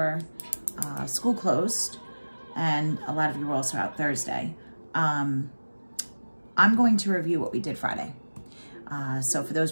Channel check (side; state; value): both; inverted; correlation -1.00